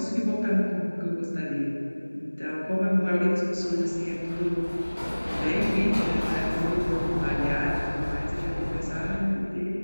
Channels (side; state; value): both; inverted; correlation -1.00